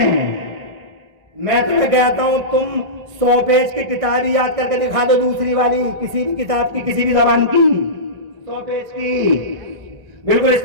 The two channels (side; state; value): left; late; 1.6 ms